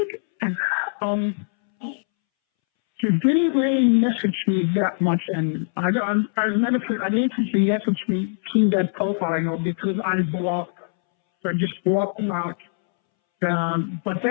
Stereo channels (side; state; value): right; silent; 63 dB below the other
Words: he didn't really message me that much, and I didn't see me see that profile, because I blocked, so I just blocked him out. But